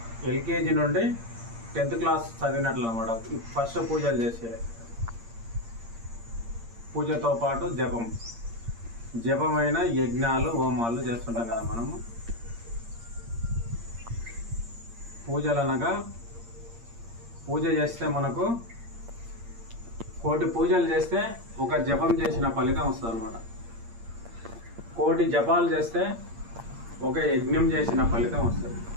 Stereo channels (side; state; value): left; late; 8.7 ms